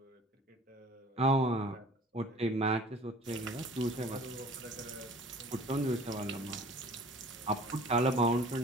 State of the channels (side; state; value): both; normal; correlation 0.47